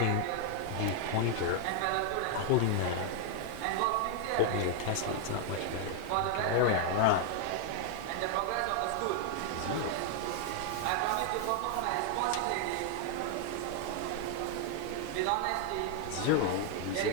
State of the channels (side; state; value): both; different; correlation 0.00